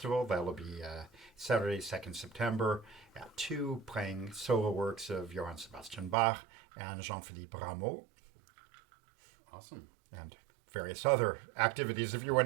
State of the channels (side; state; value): left; drops out; at 6.2 s